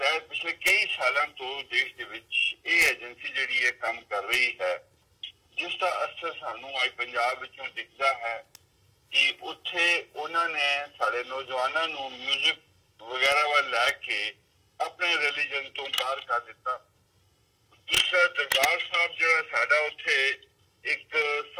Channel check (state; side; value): identical; both; correlation 1.00